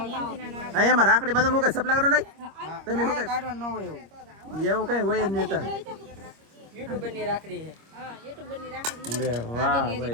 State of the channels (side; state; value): left; late; 25 ms